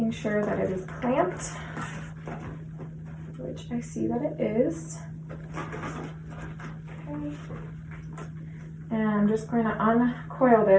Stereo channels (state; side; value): identical; both; correlation 1.00